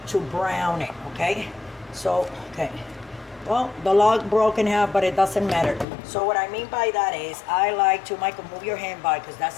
to brown it, okay? So, okay. Well, the log broke in half, but it doesn't matter. So what I mean by that is, I like to, Michael, move your hand by, because that's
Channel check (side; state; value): right; drops out; at 5.9 s